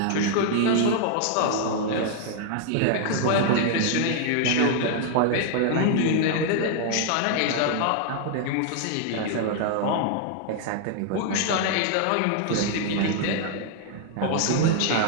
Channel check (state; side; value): different; both; correlation 0.00